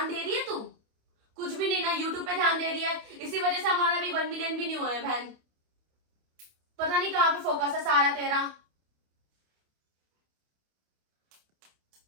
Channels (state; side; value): late; left; 28 ms